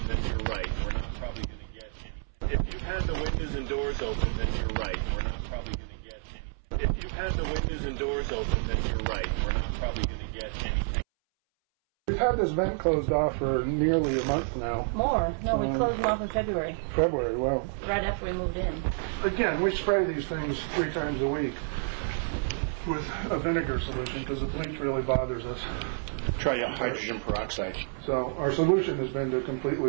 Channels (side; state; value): left; silent; 58 dB below the other